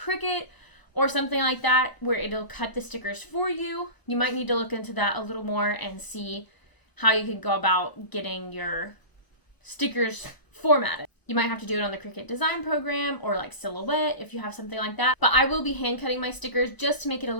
or something like that where it'll cut the stickers for you, you might need to look into that a little more and see how you can go about getting your stickers formatted. You might have to do it on the Cricut design program or like Silhouette if you have something like that. But I will be hand cutting my stickers just to make it a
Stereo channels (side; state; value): right; late; 1.0 ms